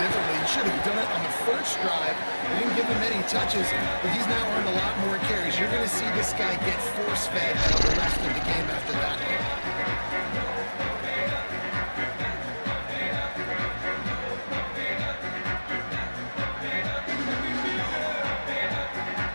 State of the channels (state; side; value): inverted; both; correlation -1.00